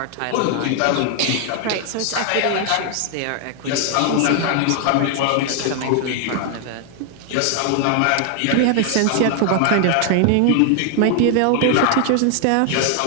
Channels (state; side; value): different; both; correlation 0.00